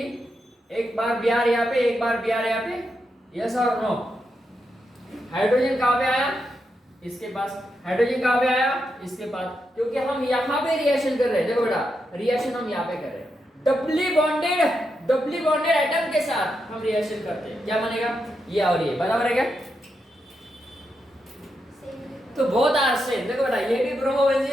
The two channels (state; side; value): normal; both; correlation 0.84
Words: एक बार Br यहाँ पे, एक बार Br यहाँ पे, यस और नो। हाइड्रोजन कहाँ पे आया, इसके पास, हाइड्रोजन कहाँ पे आया, इसके पास, क्योंकि हम यहाँ पे रिएक्शन कर रहे हैं। देखो बेटा रिएक्शन हम यहाँ पे कर रहे हैं, डबली बॉन्डेड एटम के साथ हम रिएक्शन करते हैं, क्या बनेगा, ये और ये बराबर है क्या। तो बहुत आर सेम। देखो बेटा ये भी